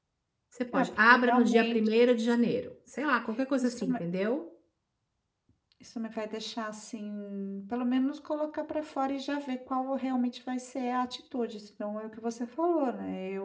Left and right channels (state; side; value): identical; both; correlation 1.00